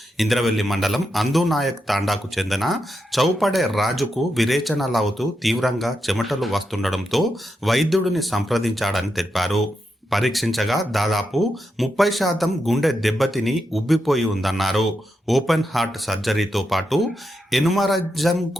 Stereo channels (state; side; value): normal; both; correlation 0.85